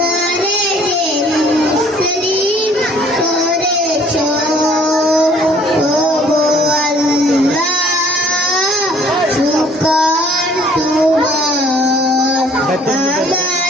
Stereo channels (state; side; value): normal; both; correlation 0.57